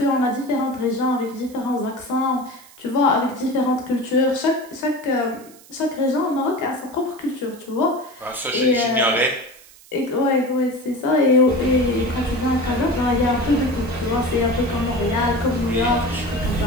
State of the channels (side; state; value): right; noise; hiss, 23 dB below the sound